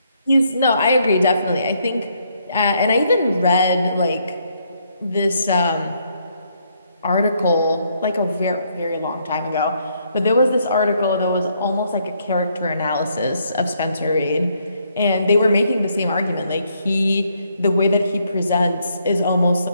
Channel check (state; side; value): inverted; both; correlation -0.72